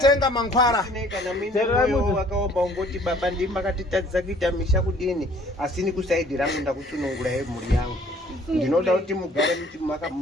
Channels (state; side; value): normal; both; correlation 0.56